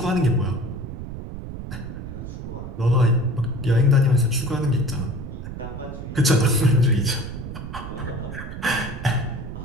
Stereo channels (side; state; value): right; noise; rumble, 9 dB below the sound